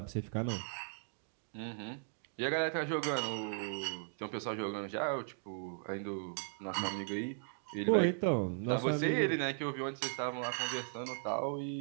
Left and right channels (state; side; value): silent; left; digital silence